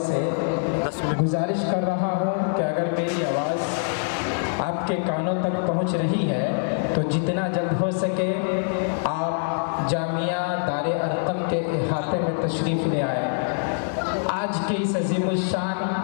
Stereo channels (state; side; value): silent; right; digital silence